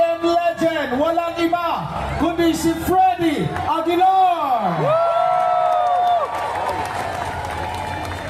legend, walang iba kundi si Freddy Aguilar.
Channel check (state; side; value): identical; both; correlation 1.00